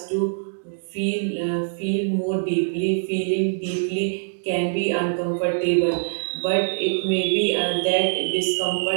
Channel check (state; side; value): silent; left; digital silence